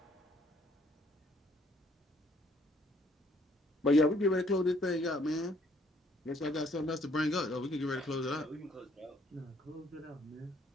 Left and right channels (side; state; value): both; normal; correlation 0.64